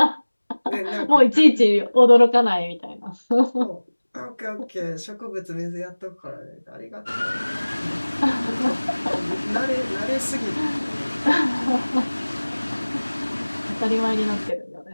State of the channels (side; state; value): both; inverted; correlation -1.00